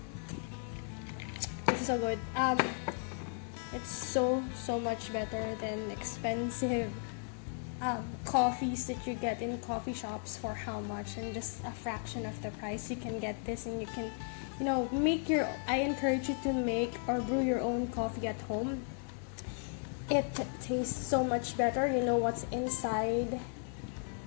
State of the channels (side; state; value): right; silent; 54 dB below the other